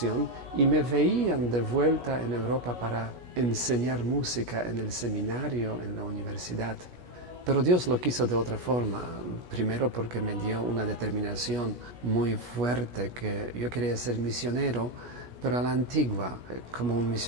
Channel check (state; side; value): late; left; 17 ms